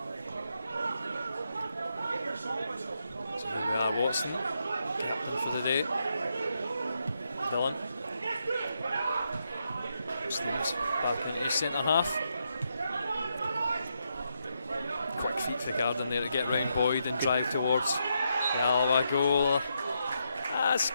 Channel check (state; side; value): inverted; both; correlation -0.81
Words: So here we are, Watson for the day. Dillon. Steve's back into centre half. Quick feet for Garden there to get round Boyd and drive towards the Alloa goal. That's